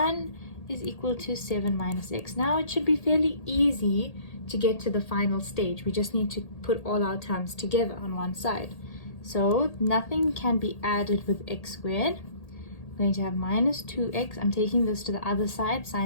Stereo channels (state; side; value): late; right; 1.8 ms